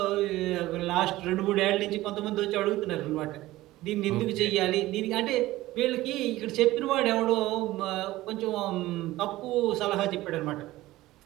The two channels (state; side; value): quieter; left; 17.0 dB